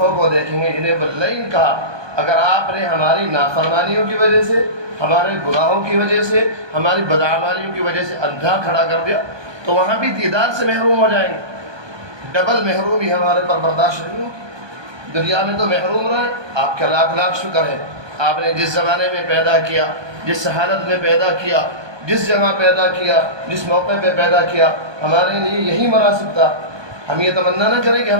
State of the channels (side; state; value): left; late; 1.2 ms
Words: کو دیکھیں گے جنہیں واللیل کہا۔ اگر آپ نے ہماری نافرمانیوں کی وجہ سے، ہمارے گناہوں کی وجہ سے، ہماری بدعمالیوں کی وجہ سے اندھا کھڑا کر دیا تو وہاں بھی دیدار سے محروم ہو جائیں گے۔ ڈبل محرومی ہمارے پر برداشت نہیں ہوگی۔ دنیا میں تو محروم رہے، آپ کا لاکھ لاکھ شکر ہے، آپ نے جس زمانے میں پیدا کیا، جس حالت میں پیدا کیا، جس جگہ پیدا کیا، جس موقع پہ پیدا کیا، ہمارے لیے یہی مناسب تھا۔ ہم یہ تمنا نہ کریں کہ